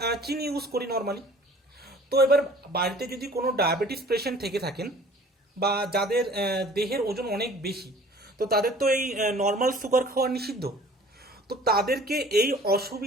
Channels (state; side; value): normal; both; correlation 0.49